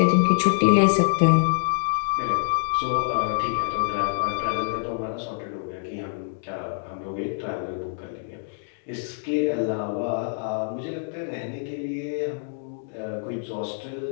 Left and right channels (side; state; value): right; silent; digital silence